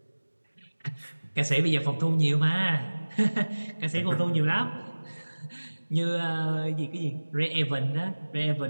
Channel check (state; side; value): inverted; both; correlation -1.00